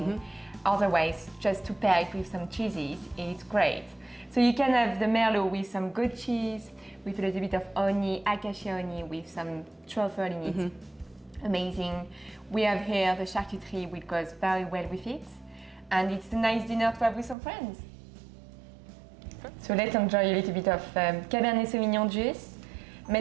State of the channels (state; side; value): drops out; left; at 17.4 s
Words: Mm-hmm. Otherwise, just to pair it with some cheeses, it's great. So you can have the merlot with some goat cheese, with a little bit of honey, acacia honey, with some truffle in it. Mm-hmm. Amazing. We have here the charcuterie, which goes very well with it. And it's a nice dinner to have with some friends. So let's enjoy a little bit of Cabernet Sauvignon juice,